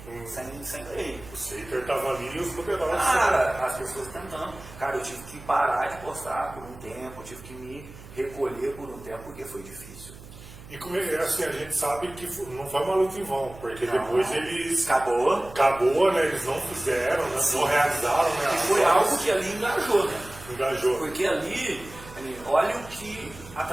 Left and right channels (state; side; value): noise; right; hum, 17 dB below the sound